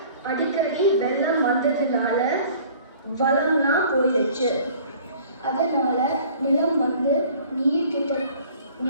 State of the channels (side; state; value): both; inverted; correlation -0.50